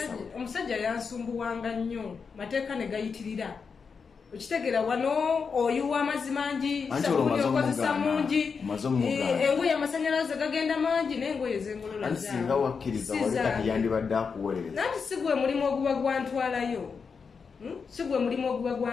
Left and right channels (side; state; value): right; quieter; 5.6 dB